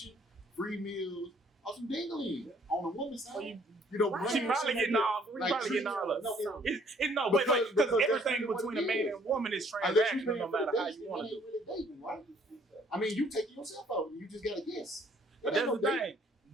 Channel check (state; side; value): normal; both; correlation 0.61